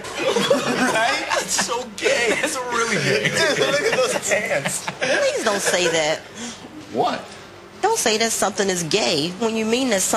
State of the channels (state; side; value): identical; both; correlation 1.00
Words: That's so gay. That's really gay. Look at those pants. Please don't say that. What? Don't say that something is gay when you mean that